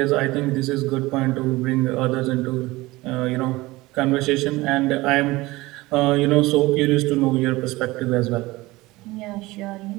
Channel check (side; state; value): left; quieter; 20.2 dB